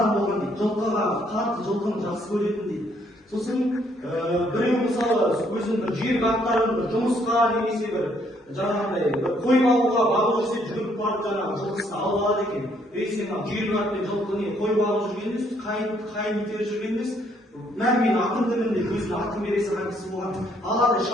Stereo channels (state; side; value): normal; both; correlation 0.68